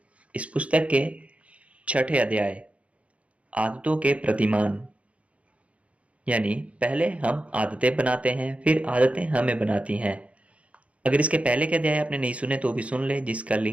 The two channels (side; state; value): left; late; 0.063 ms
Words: इस पुस्तक के छठे अध्याय आदतों के प्रतिमान, यानी पहले हम आदतें बनाते हैं फिर आदतें हमें बनाती हैं। अगर इसके पहले के अध्याय आपने नहीं सुने तो भी सुन ले, जिसका